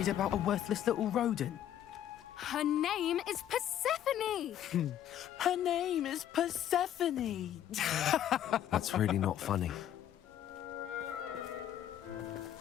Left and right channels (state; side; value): quieter; right; 10.9 dB